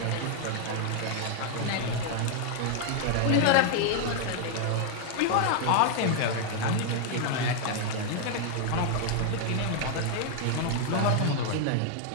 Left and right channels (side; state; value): both; different; correlation 0.00